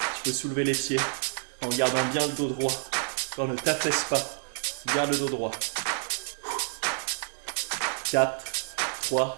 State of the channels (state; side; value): silent; left; 59 dB below the other